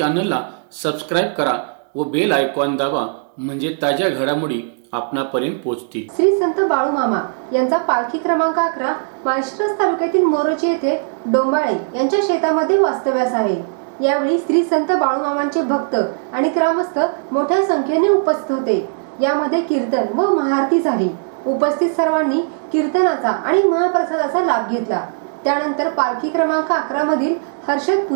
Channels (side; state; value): left; silent; digital silence